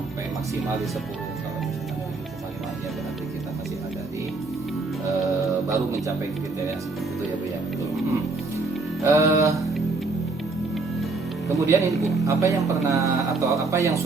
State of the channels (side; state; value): left; quieter; 3.6 dB